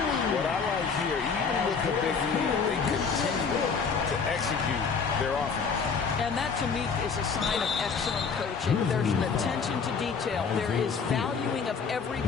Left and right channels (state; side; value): quieter; right; 5.6 dB